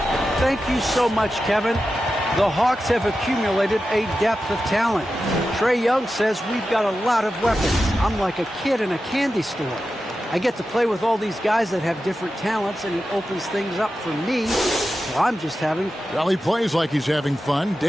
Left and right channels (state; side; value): normal; both; correlation 0.92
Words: Thank you so much, Kevin. The Hawks have accumulated a depth of talent. Trae Young says we've got a lot of weapons. I'm like a kid in a candy store. I get to play with all these guys that have different talents, and it opens things up for me. So I'm just having... Well, he plays like he's having fun.